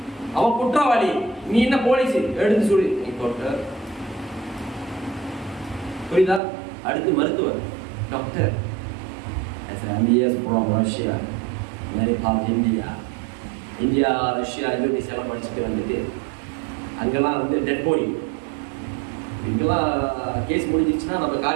அவன் குற்றவாளி. நீ என்ன போலீஸ் எடுத்து சொல்லி புரியுதா? அடுத்து மருத்துவர், டாக்டர். இந்தியா, ரஷ்யா, இந்தோனேஷியாலாம் படிச்சுட்டு வந்துட்டு அங்கெல்லாம் வந்து டெட் பாடி, இங்கெல்லாம் கேஸ் முடிஞ்சிச்சுன்னா நம்ம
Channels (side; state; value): left; drops out; at 6.4 s